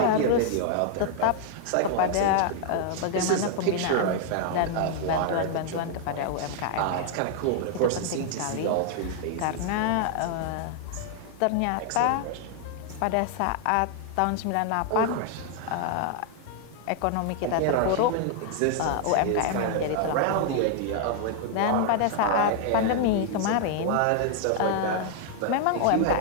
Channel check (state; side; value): different; both; correlation 0.00